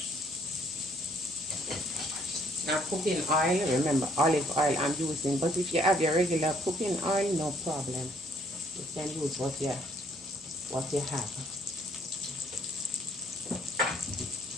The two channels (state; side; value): normal; both; correlation 0.64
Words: Now cooking oil, remember olive oil I'm using, but if you have your regular cooking oil, no problem. You can use what you have.